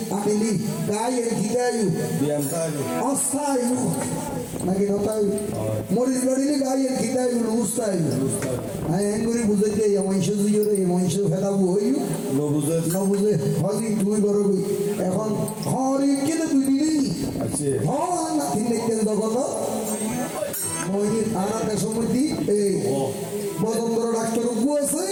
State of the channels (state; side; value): identical; both; correlation 1.00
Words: আনিলি গায়ে গিদায়ু অস্থায়ু নাকি নতায়ু মরিস বাড়িলে গায়ে গিদায়ু লুস্তায়ু হ্যাঁ এঙ্গুরি বুঝাইতে মহিষ দিয়ে মহিষ ফেদাবো হইউ নবুঝে হলি তুই করবি এখন হরি কেটে তুই দিলি হন নাতি দেখতেন তখন মহির আনাতে সমৃদ্ধি এই বদন্দর ডাক্তার উপু আছে